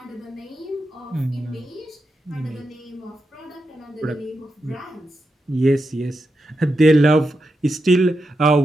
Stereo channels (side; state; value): both; normal; correlation 0.87